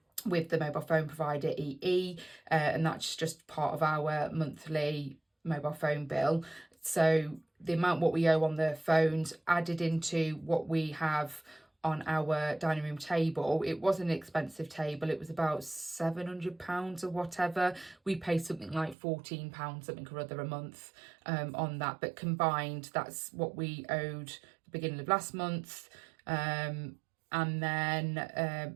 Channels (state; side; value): drops out; left; at 18.9 s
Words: with the mobile phone provider EE, and that's just part of our monthly mobile phone bill. So the amount what we owe on the phones added into what we have on our dining room table. It wasn't an expensive table. It was about £700 or whatever. We pay something like £14 something or other a month on that. But combined, that's what we owed the beginning of last month. And then